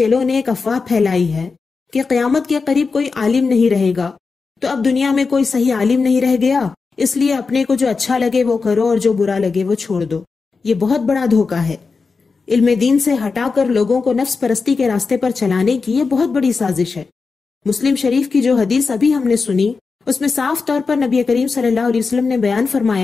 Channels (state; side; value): quieter; right; 4.6 dB